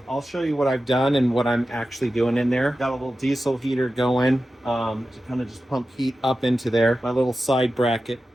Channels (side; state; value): both; normal; correlation 0.93